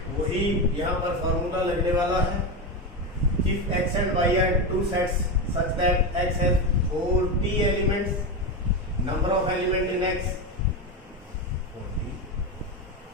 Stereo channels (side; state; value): both; normal; correlation 0.15